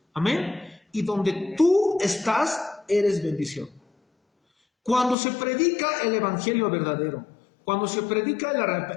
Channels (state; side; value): drops out; right; at 5.2 s